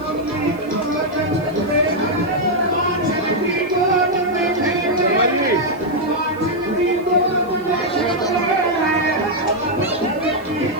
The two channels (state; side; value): noise; right; hiss, 28 dB below the sound